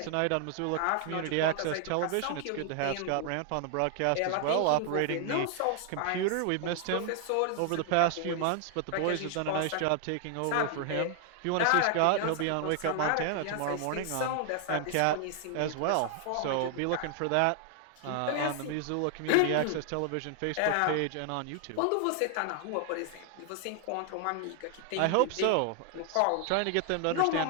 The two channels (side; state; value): both; different; correlation 0.00